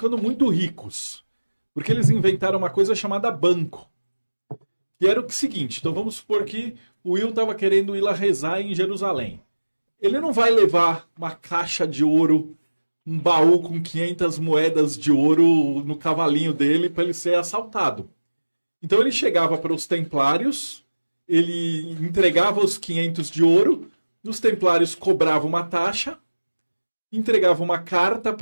muito ricos, porque eles inventaram uma coisa chamada banco. E era o seguinte, então vamos supor que o Will estava querendo ir lá rezar em Jerusalém. Ele não vai levar uma caixa de ouro, um baú com 500 moedas de ouro no cavalinho dele para ele ser assaltado. Então ele chegava para os Templários, ele entregava os 500 de ouro, os Templários cobravam uma taxa, entregavam uma carta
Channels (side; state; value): both; inverted; correlation -1.00